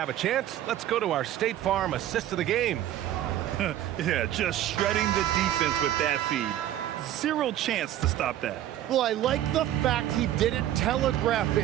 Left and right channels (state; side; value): quieter; left; 12.5 dB